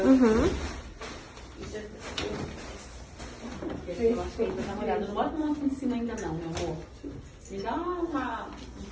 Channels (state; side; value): identical; both; correlation 1.00